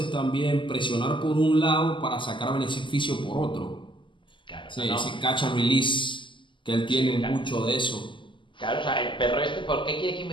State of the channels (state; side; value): late; right; 0.24 ms